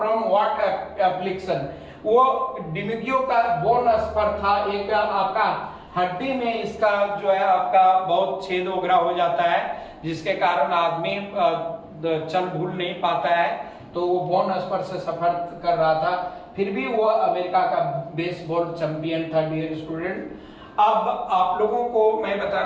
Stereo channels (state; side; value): identical; both; correlation 1.00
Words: व्हाट एप्लिकेशन। वो डिमुगियो का बोन स्पर था, एक आपका हड्डी में इसका जो है आपका बहुत छेद वगैरह हो जाता है जिसके कारण आदमी चल भूल नहीं पाता है, तो वो बोन स्पर से सफर कर रहा था, फिर भी वो अमेरिका का बेसबॉल चैंपियन था डियर स्टूडेंट। अब आप लोगों को मैं